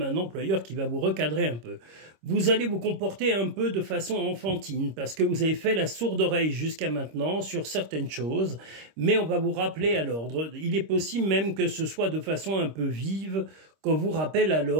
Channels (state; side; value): late; left; 26 ms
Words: un employeur qui va vous recadrer un peu. Vous allez vous comporter un peu de façon enfantine parce que vous avez fait la sourde oreille jusqu'à maintenant sur certaines choses, mais on va vous rappeler à l'ordre. Il est possible même que ce soit de façon un peu vive qu'on vous rappelle à